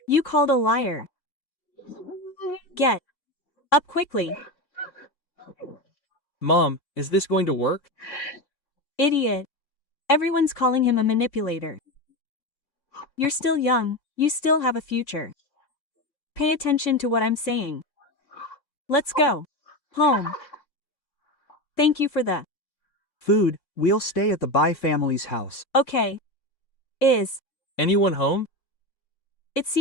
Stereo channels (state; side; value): late; right; 3.6 ms